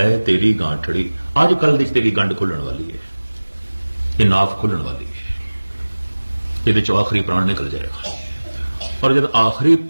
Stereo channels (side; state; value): both; inverted; correlation -1.00